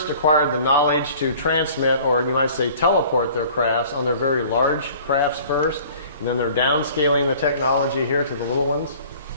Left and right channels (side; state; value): both; inverted; correlation -0.49